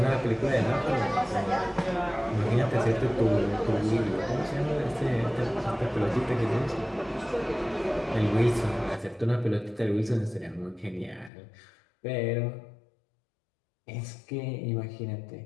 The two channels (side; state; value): right; drops out; at 11.3 s